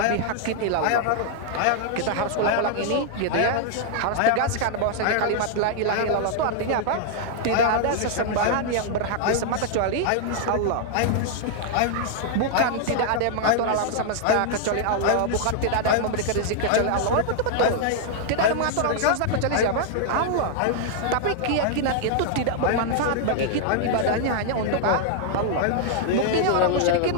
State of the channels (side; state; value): both; different; correlation -0.01